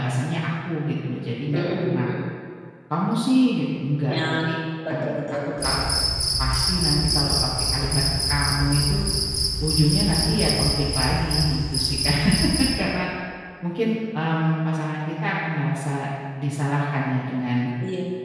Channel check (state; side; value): identical; both; correlation 1.00